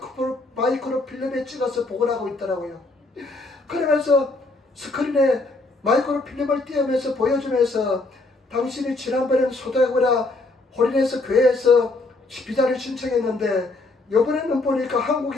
마이크로 필름에 찍어서 복원하고 있더라고요. 그러면서 스크린에 마이크로 필름을 띄우면서 보여주면서 당신이 지난번에는 소다고라 홀인해서 교회에서 비자를 신청했는데 이번에는 보니까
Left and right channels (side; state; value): right; quieter; 3.1 dB